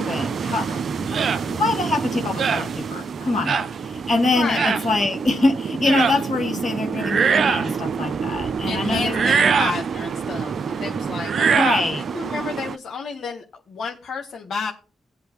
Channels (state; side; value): normal; both; correlation 0.79